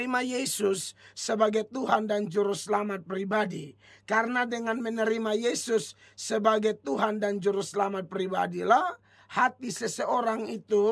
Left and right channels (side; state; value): both; identical; correlation 1.00